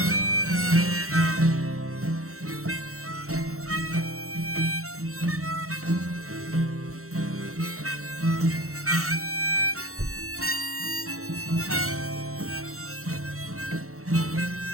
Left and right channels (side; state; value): left; late; 0.64 ms